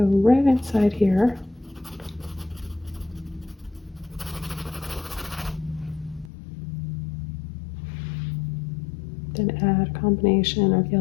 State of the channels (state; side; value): drops out; right; at 6.3 s